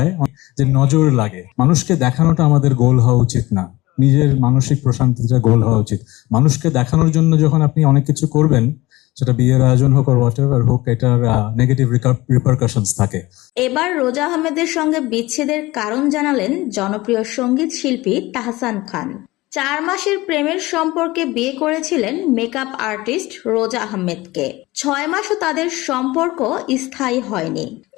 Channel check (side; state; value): right; quieter; 19.6 dB